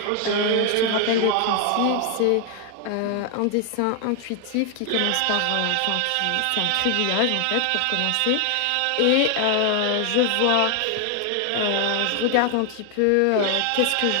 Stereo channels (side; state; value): both; different; correlation 0.00